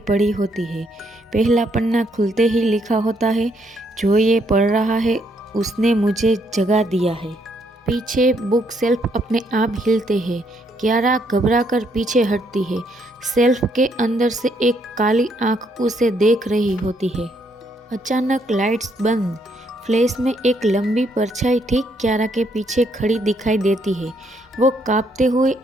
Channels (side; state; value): both; normal; correlation 0.72